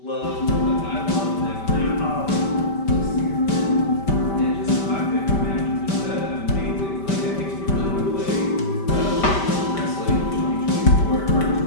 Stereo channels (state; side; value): late; right; 5.1 ms